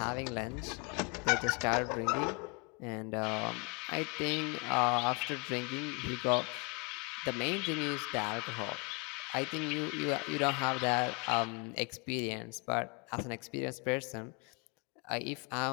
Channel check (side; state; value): right; quieter; 31.5 dB